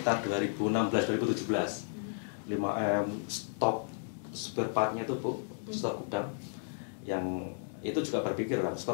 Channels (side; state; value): right; silent; digital silence